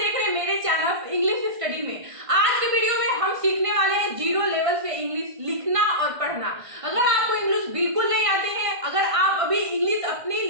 रहे हैं मेरे चैनल इंग्लिश स्टडी में। आज के वीडियो में हम सीखने वाले हैं जीरो लेवल से इंग्लिश लिखना और पढ़ना। अगर आपको इंग्लिश बिल्कुल नहीं आते हैं, अगर आप अभी इंग्लिश अपनी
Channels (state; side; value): late; left; 1.5 ms